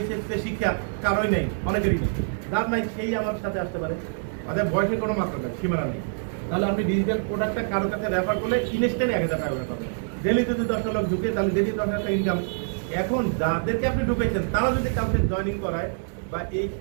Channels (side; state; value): left; silent; digital silence